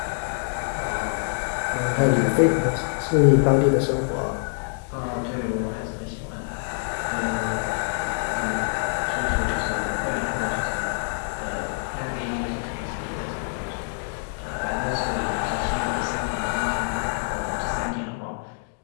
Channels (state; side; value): silent; right; digital silence